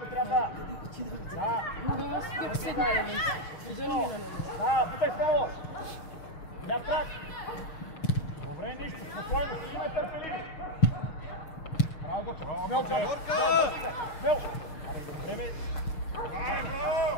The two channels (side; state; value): right; late; 6.6 ms